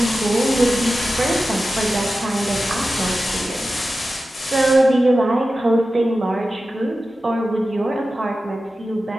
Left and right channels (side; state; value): both; normal; correlation 0.94